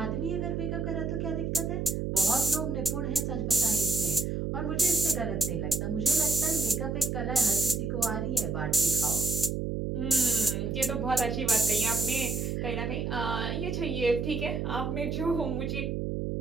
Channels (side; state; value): right; noise; hum, 1 dB below the sound